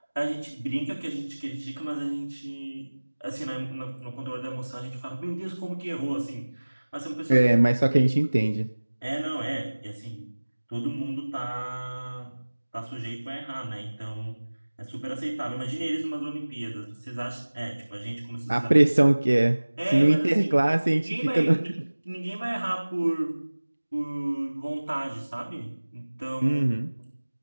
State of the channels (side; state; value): both; inverted; correlation -1.00